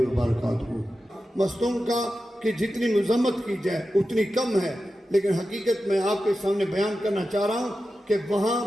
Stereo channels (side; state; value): both; normal; correlation 0.92